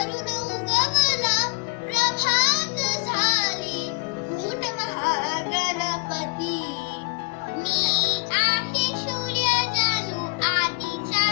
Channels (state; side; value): quieter; right; 28.5 dB